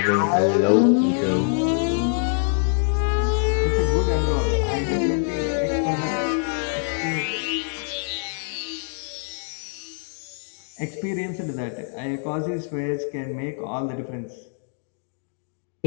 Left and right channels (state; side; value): silent; right; 62 dB below the other